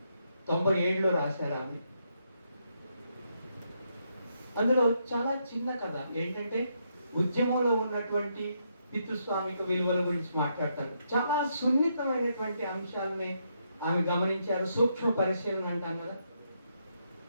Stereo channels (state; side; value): inverted; both; correlation -0.78